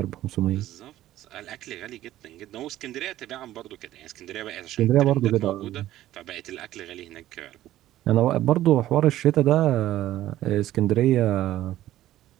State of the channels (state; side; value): quieter; left; 14.0 dB